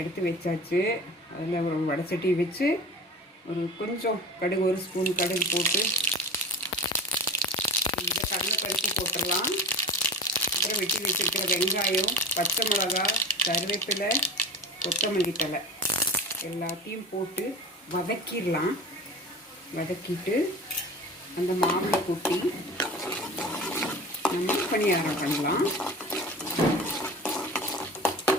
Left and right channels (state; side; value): normal; both; correlation 0.35